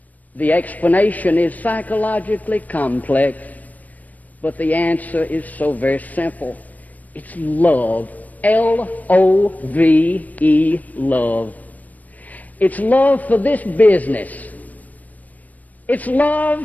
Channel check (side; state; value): right; late; 0.076 ms